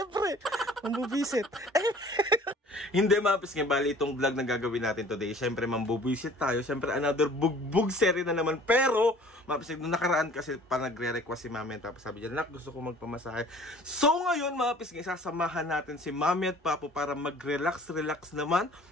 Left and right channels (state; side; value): normal; both; correlation 0.50